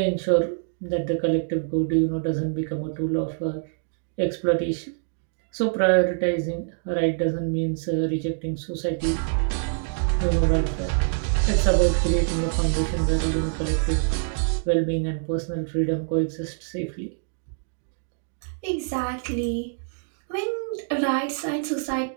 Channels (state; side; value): silent; left; digital silence